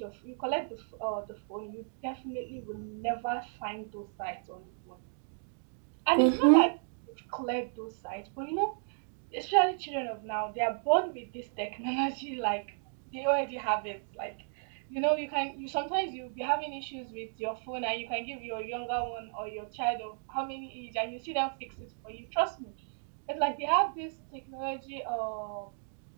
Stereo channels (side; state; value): left; silent; digital silence